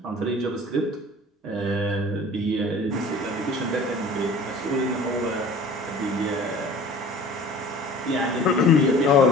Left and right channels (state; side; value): normal; both; correlation 0.44